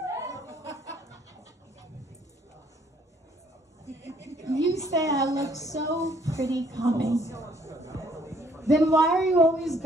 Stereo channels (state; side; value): normal; both; correlation 0.63